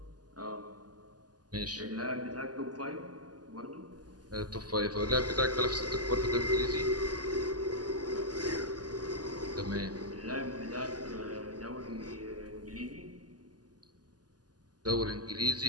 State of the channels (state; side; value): late; left; 0.69 ms